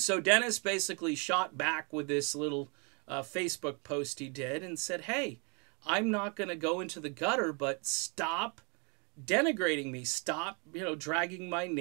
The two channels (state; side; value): quieter; left; 34.1 dB